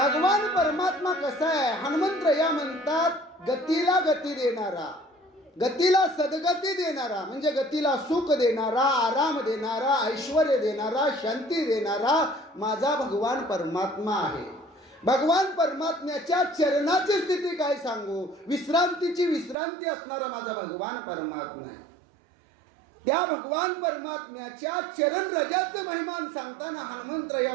परमात्मा कसा आहे? हनुमंतराया म्हणतात, गतीला गती देणारा, गतीला सद्गती देणारा, म्हणजे गतीला सुख देणारा, आराम देणारा, ऐश्वर्य देणारा, शांती देणारा माझा भगवान परमात्मा आहे. भगवान परमात्म्याच्या चरणाची स्थिती काय सांगू, विश्रांतीची विश्रांती असणारा माझा भगवान परमात्मा आहे. त्या भगवान परमात्म्याच्या चरण रजाचं महिमान सांगताना हनुमंतराया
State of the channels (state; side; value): drops out; left; at 19.6 s